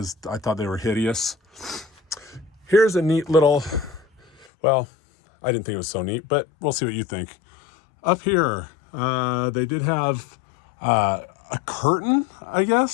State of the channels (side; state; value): right; drops out; at 4.5 s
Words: I thought they were hideous. Here's a neat little, well, I didn't think it was so neat, but we'll see what you think. Up here, they did have a curtain, I